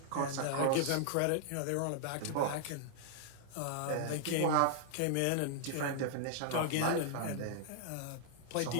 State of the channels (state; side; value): different; both; correlation -0.01